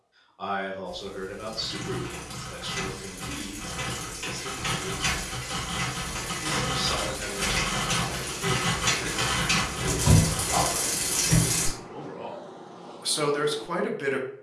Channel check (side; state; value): both; identical; correlation 1.00